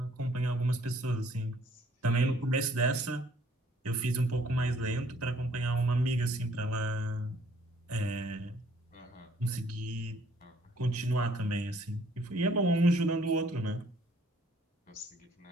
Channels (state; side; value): normal; both; correlation 0.61